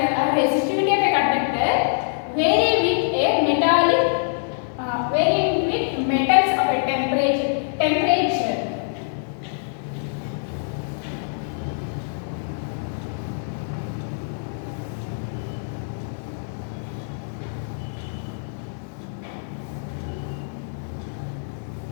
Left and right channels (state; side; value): silent; right; digital silence